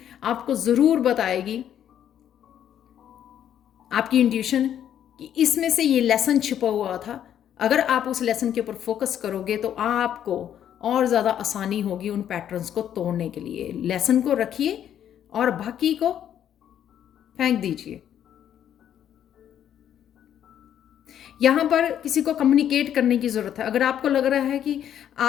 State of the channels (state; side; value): quieter; right; 10.0 dB